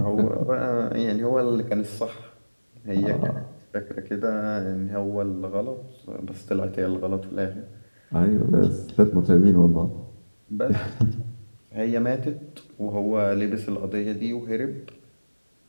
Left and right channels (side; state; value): both; inverted; correlation -1.00